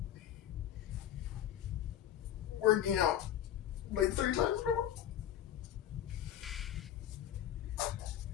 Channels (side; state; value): right; quieter; 11.0 dB